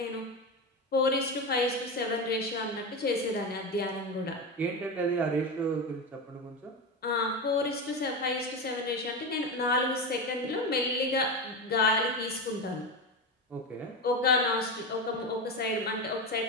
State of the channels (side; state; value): both; normal; correlation 0.18